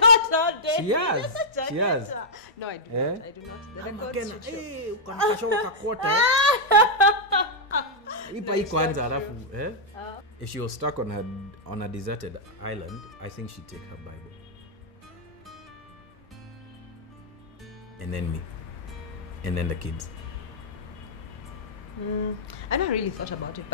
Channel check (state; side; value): normal; both; correlation -0.08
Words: know, Denise. She has. She has. No, I do not. I do not. The records Makena, should show. hey, ukanikashoka kakota. Ipa hii kwanza alafu, If she was stuck on a deserted island, I think she'd take her Bible. And then me. And then the kids. I never really thought about it,